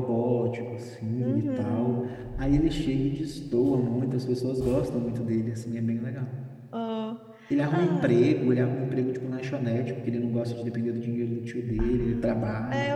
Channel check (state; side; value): identical; both; correlation 1.00